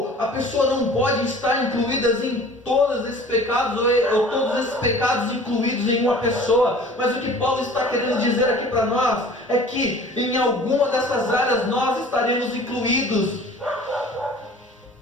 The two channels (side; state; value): both; normal; correlation 0.46